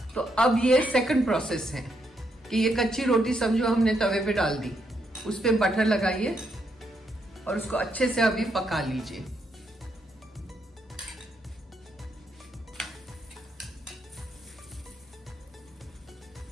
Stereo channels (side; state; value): both; normal; correlation 0.77